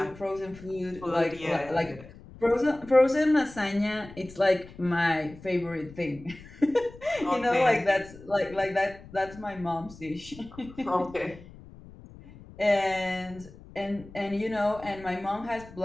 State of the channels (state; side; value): noise; left; rumble, 19 dB below the sound